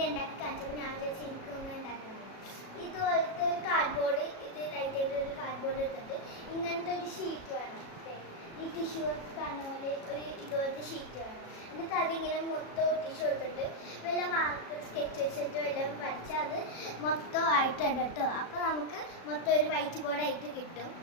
ഉണ്ടാക്കി കാണിച്ചപ്പോൾ ഞാൻ വിചാരിച്ചു എനിക്കൊന്നും ഉണ്ടാക്കണം. ഇതുപോലത്തെ ഒരു കാർഡ്ബോർഡ്, ഇത് ലൈറ്റായിട്ട് ഒരു കാർഡ്ബോർഡ് എടുത്തിട്ട് ഇങ്ങനത്തെ ഒരു ഷീറ്റ് വേണം. ഈ ടിഷ്യൂ കാണുന്ന പോലെ ഒരു ഇതുപോലത്തെ ഷീറ്റ് വേണം. എന്നിട്ട് അതിങ്ങനെ മൊത്തം ഒട്ടിച്ചു കൊടുത്തിട്ട് വല്ല മാർക്കർ സ്കെച്ച് വെച്ചിട്ട് വല്ലതും വരച്ചാൽ അത് മൊത്തം ആയിട്ടുണ്ട് കേട്ടോ. അപ്പോൾ നമുക്ക് മൊത്തം ഒരു വൈറ്റ് ബോർഡായിട്ട് കിട്ടും.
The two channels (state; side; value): late; right; 37 ms